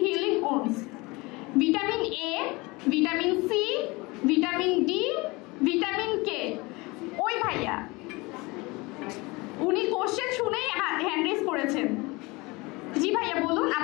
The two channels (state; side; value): quieter; right; 24.2 dB